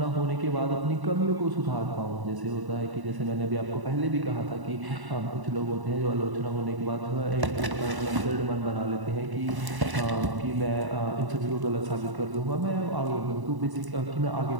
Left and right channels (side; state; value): left; late; 1.0 ms